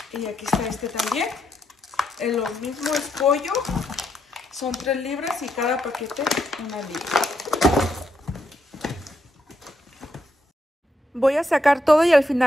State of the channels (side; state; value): both; normal; correlation 0.79